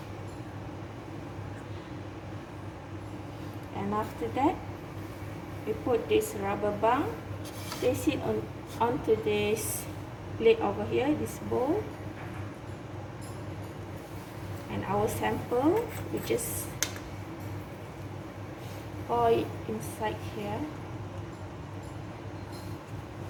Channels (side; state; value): both; identical; correlation 1.00